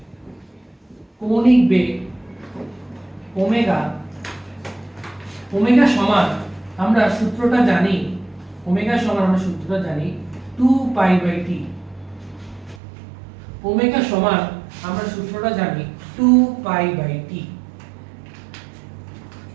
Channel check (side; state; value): left; drops out; at 12.8 s